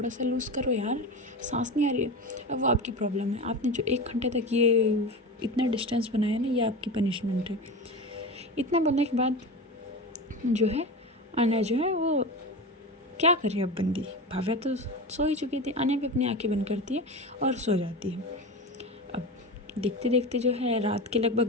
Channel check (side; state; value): both; normal; correlation 0.25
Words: सा लूज़ करो यार, सांस नहीं आ रही है। अब वो आपकी प्रॉब्लम है, आपने जो 1 घंटे तक ये इतना डिस्टेंस बनाया ना, ये आपकी पनिशमेंट है। इतना बोलने के बाद जो है आना जो है वो क्या करे अब बंदी। भाव्या तो सो ही चुकी थी, आने भी अपनी आंखें बंद करती है और सो जाती है। अब देखते देखते जो है रात के लगभग